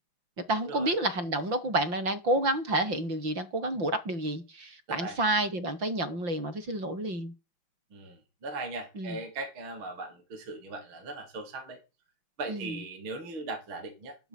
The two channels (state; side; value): late; left; 5.8 ms